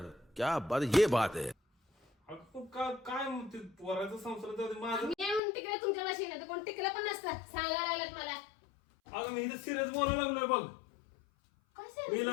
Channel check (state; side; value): drops out; right; at 5.4 s